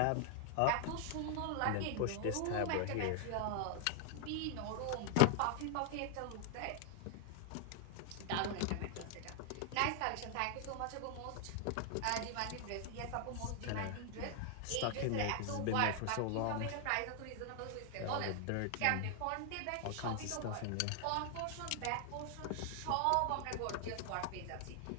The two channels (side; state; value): both; different; correlation 0.00